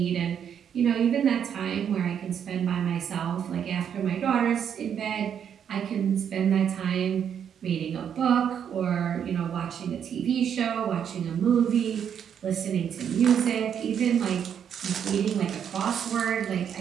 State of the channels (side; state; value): left; quieter; 8.4 dB